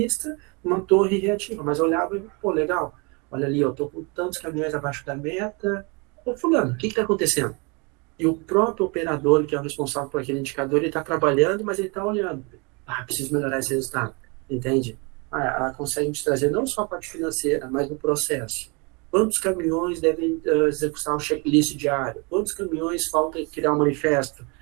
uma torre reativa. Mas olhava e, pô, legal, olha ali, eu estou com tantos caminhões abaixo da meta. Ô, fulano, o que está acontecendo? E o próprio operador, que é o responsável por aquele indicador, ele está trabalhando, mas ele está olhando. Preciso melhorar esse resultado, entende? Ela consegue te trazer não só a parte financeira, mas o processo. Quantos caminhões devem executar um checklist diário? Quantos caminhões falta criar um manifesto?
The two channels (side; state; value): left; quieter; 31.0 dB